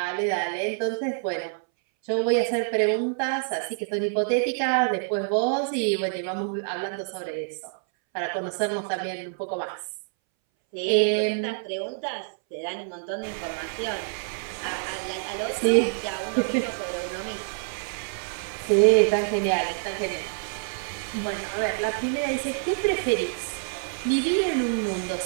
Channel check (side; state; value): left; silent; 60 dB below the other